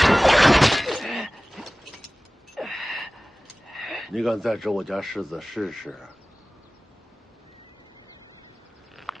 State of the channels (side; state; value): both; normal; correlation 0.98